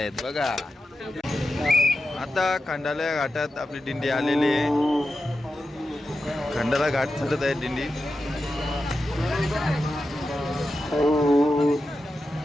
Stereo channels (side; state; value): both; normal; correlation 0.91